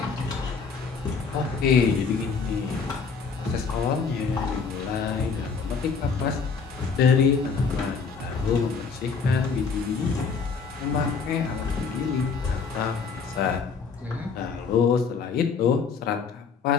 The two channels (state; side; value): quieter; right; 5.3 dB